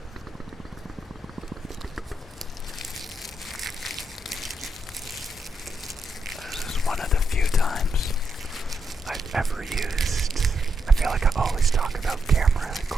This is one of the few times I've ever used. I feel like I always talk about camera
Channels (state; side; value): normal; both; correlation 0.81